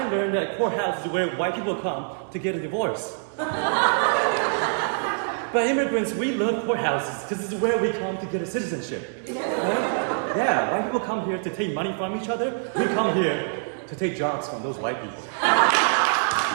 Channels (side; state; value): left; silent; digital silence